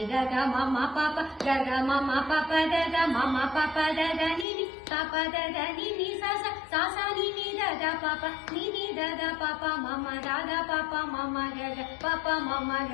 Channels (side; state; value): right; drops out; at 4.5 s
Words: ga ga ma ma pa pa ga ga ma ma pa pa da da ma ma pa pa da da ni ni pa pa da da ni ni sa sa sa sa ni ni da da pa pa ni ni da da pa pa ma ma da da pa pa ma ma ga ga pa pa ma ma